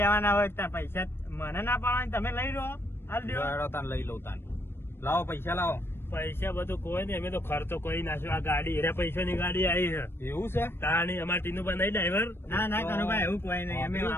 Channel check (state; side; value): late; right; 0.11 ms